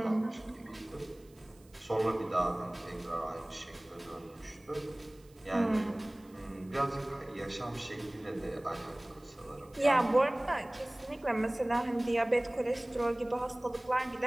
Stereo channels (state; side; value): noise; right; hiss, 29 dB below the sound